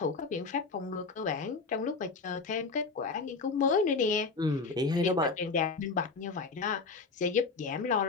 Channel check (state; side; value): quieter; right; 4.4 dB